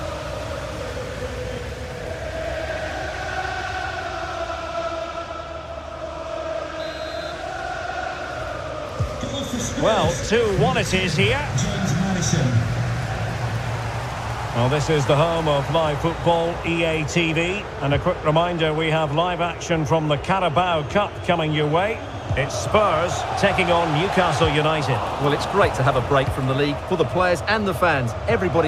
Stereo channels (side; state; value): both; identical; correlation 1.00